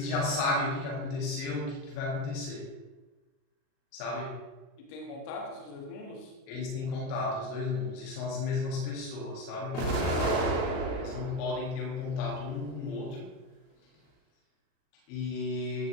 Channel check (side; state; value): right; late; 37 ms